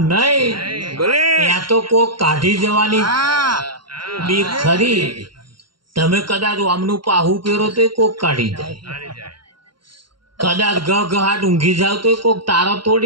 નહીં. ત્યાં તો કોક કાઢી જવાની બીક ખરી. તમે કદાચ આમનું પાહું પહેરો તો કોક કાઢી જાય, કદાચ ગહાટ ઊંઘી જાવ તો કોક તારા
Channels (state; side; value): late; left; 0.73 ms